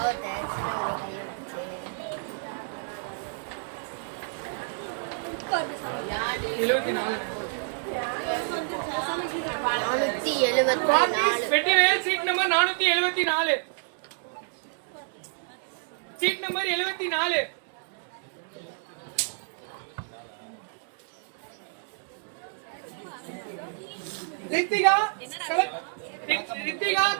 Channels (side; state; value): left; silent; digital silence